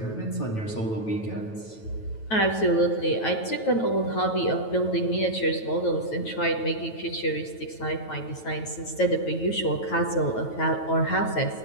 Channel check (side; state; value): right; late; 9.2 ms